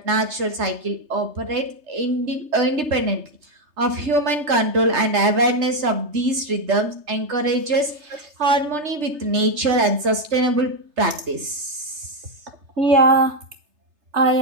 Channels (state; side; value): late; left; 3.3 ms